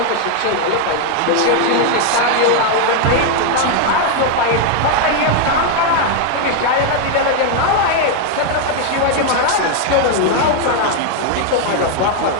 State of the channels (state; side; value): different; both; correlation 0.00